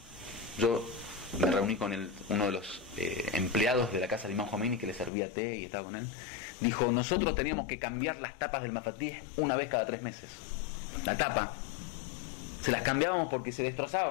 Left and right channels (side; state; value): right; drops out; at 5.1 s